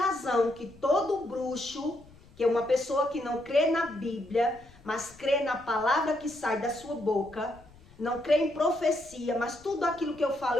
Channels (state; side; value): noise; left; rumble, 25 dB below the sound